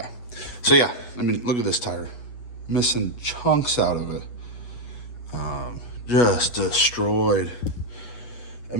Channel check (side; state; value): right; late; 8.3 ms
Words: So yeah, look at this tire. Missing chunks out of it. Just destroyed.